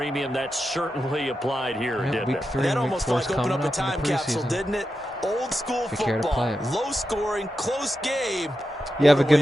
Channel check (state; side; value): normal; both; correlation 0.89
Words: That certainly applied here, didn't it? That almost like opened up a time capsule, didn't it? Old school football, low scoring, close game. You have a good